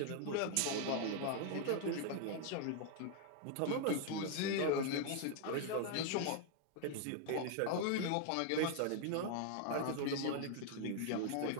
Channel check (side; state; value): both; different; correlation 0.00